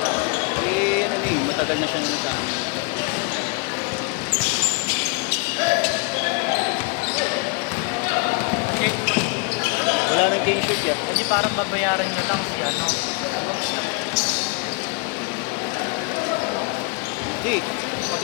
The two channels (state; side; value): quieter; right; 31.4 dB